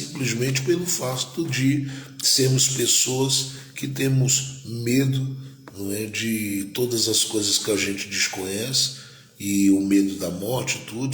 pelo fato de sermos pessoas que temos medo, não é, de todas as coisas que a gente desconhece, e o medo da morte,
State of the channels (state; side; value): identical; both; correlation 1.00